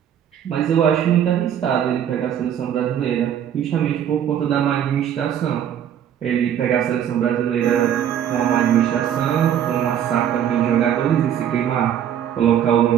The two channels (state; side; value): quieter; left; 9.7 dB